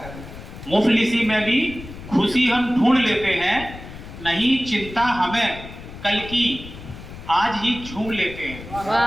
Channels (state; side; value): noise; left; rumble, 14 dB below the sound